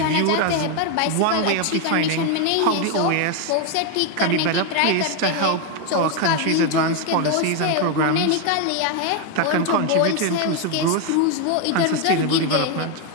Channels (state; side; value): different; both; correlation 0.01